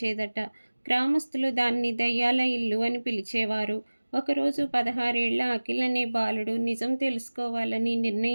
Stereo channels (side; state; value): both; inverted; correlation -1.00